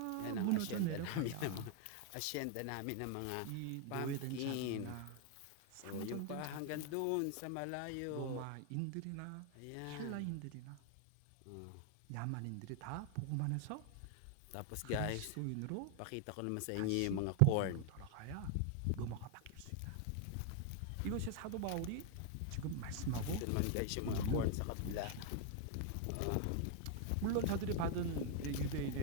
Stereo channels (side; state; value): both; different; correlation 0.00